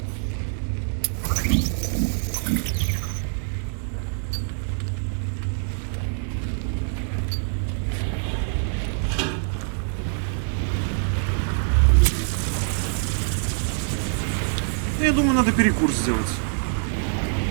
Я думаю, надо перекур сделать.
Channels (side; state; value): left; silent; digital silence